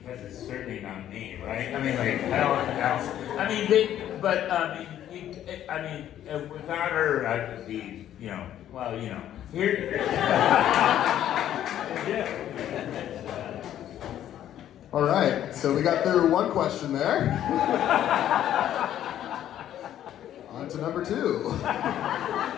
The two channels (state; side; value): quieter; right; 11.4 dB